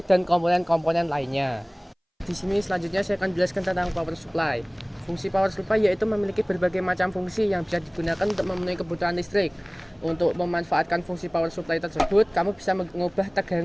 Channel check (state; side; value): identical; both; correlation 1.00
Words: dan komponen-komponen lainnya. Di sini selanjutnya saya akan jelaskan tentang power supply. Fungsi power supply yaitu memiliki berbagai macam fungsi yang bisa digunakan untuk memenuhi kebutuhan listrik. Untuk memanfaatkan fungsi power supply tersebut, kamu bisa mengubah